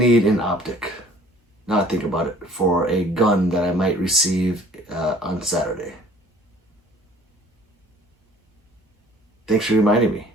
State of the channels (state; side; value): normal; both; correlation 0.53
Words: an optic. Now I think about it, for a gun that I might receive on Saturday. Thanks for reminding me.